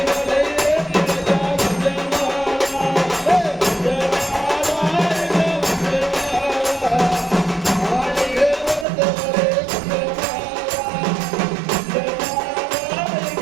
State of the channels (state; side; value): drops out; left; at 8.8 s